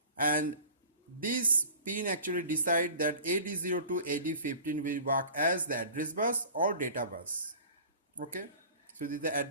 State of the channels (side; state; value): both; inverted; correlation -0.41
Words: and this pin actually decide that AD0 to AD15 will work as the address bus or data bus. Okay, so this is the